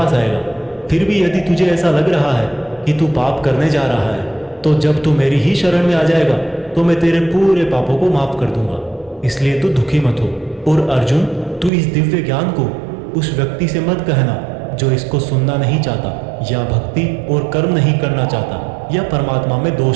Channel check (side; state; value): left; drops out; at 11.7 s